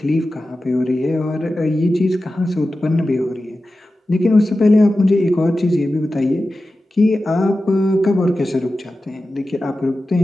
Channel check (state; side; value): normal; both; correlation 0.94